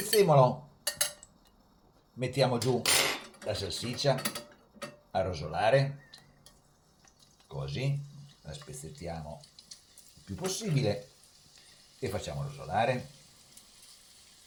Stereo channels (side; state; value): both; identical; correlation 1.00